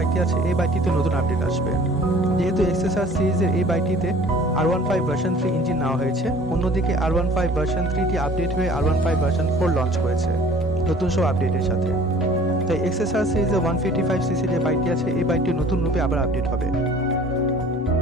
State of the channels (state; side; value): normal; both; correlation 0.49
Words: আছে, এই বাইকটিতে নতুন আপডেট আসবে। যেহেতু XSR সিরিজের এই বাইকটিতে R15 ভার্সন 3 ইঞ্জিন নেওয়া হয়েছে, অন্যদিকে R15 ভার্সন 3টি আপডেট হয়ে R15 ভার্সন 4 লঞ্চ করেছে নতুন সব আপডেটের সাথে। তাই XSR সিরিজের 155cc যে বাইকটি আছে, এই বাইকটি নতুন রূপে আবার আপডেট হবে,